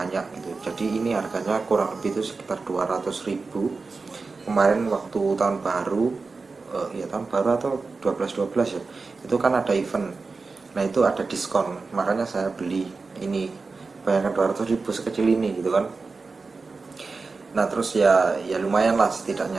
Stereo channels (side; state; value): left; quieter; 4.1 dB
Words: gitu. Jadi ini harganya kurang lebih itu sekitar 200.000. Kemarin waktu tahun baru, ya tahun baru atau 12 ya, itu kan ada event. Nah itu ada diskon, makanya saya beli ini. Bayangkan 200.000 sekecil ini gitu kan. Nah terus ya lumayan lah